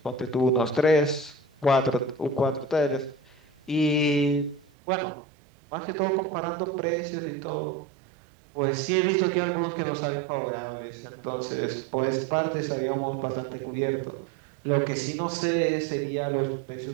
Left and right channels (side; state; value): left; drops out; at 4.7 s